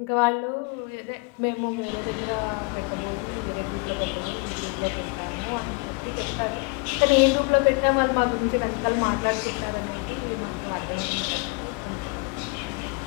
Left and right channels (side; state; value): right; quieter; 30.8 dB